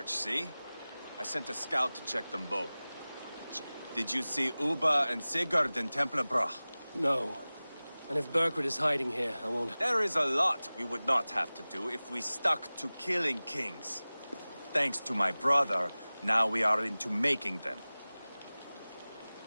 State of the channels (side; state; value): both; inverted; correlation -0.98